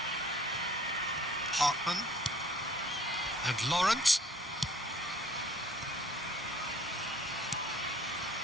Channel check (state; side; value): normal; both; correlation 0.54